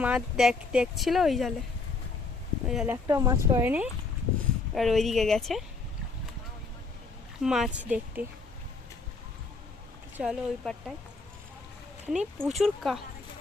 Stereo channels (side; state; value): right; quieter; 4.0 dB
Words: মাছ দেখছিল, ওই জালে একটাও মাছ পড়েনি। আর ওইদিকে গেছে মাছ দেখতে। চলো ওই পারটায়, এখানে প্রচুর